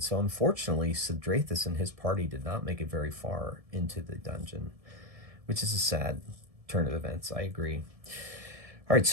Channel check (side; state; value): left; late; 1.7 ms